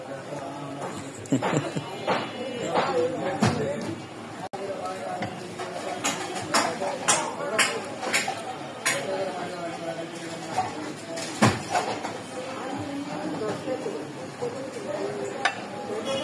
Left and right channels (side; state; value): both; identical; correlation 1.00